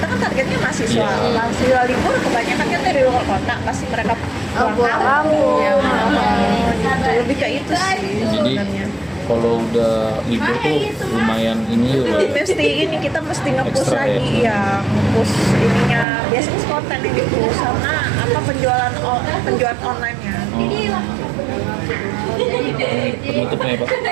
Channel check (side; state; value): left; drops out; at 16.1 s